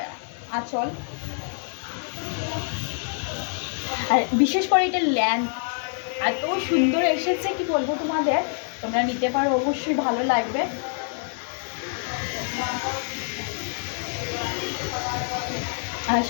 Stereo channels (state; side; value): silent; right; digital silence